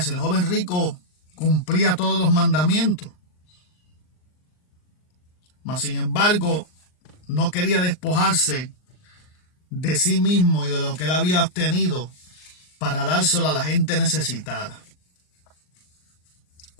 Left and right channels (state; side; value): late; right; 39 ms